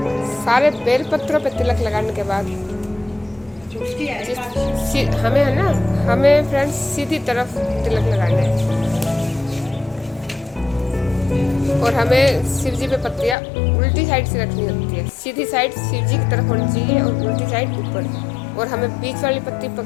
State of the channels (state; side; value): drops out; right; at 13.4 s